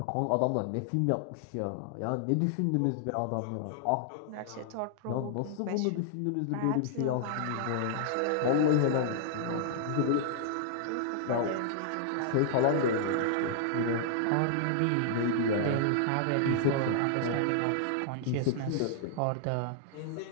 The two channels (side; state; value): both; different; correlation -0.01